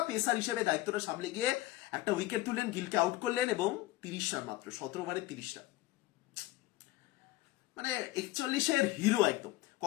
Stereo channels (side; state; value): right; quieter; 17.5 dB